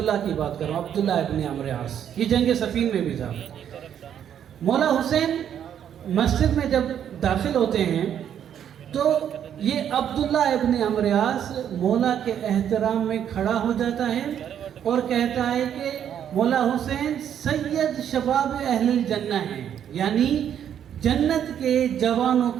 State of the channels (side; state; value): left; quieter; 9.4 dB